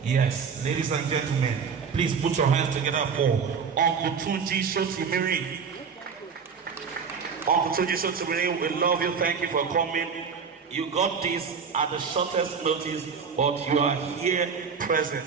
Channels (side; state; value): left; quieter; 6.1 dB